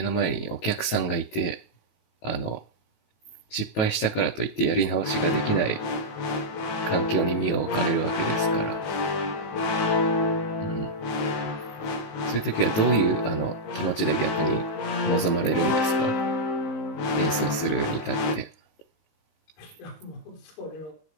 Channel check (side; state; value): right; late; 19 ms